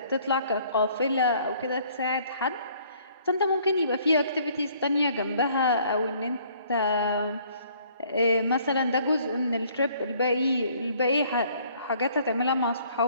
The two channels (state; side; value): inverted; both; correlation -0.60